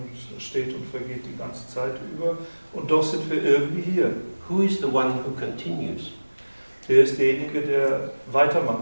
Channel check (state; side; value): inverted; both; correlation -1.00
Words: es steht und vergeht die ganze Zeit über. Und doch sind wir irgendwie hier. Who is the one who continues? Wer ist derjenige, der